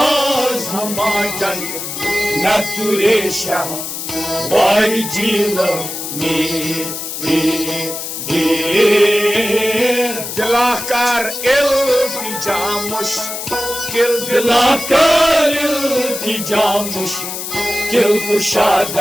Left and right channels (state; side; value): noise; left; hiss, 6 dB below the sound